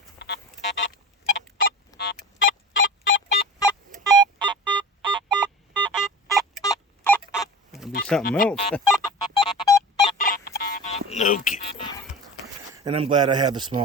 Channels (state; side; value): normal; both; correlation 0.34